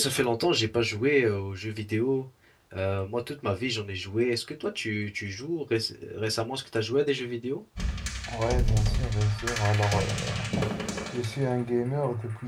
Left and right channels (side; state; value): both; identical; correlation 1.00